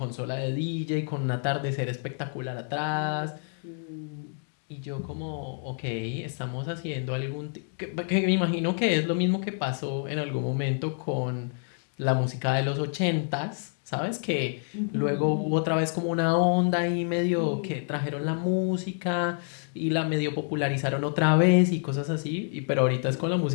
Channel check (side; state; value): right; silent; 59 dB below the other